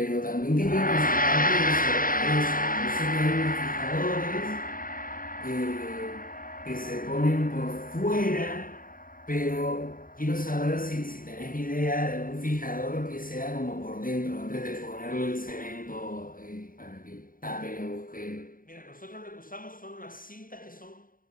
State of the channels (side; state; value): right; late; 0.41 ms